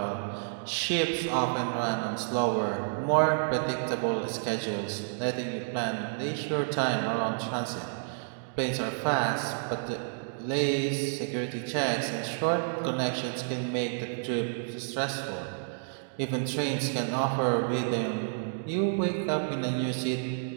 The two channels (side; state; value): left; silent; digital silence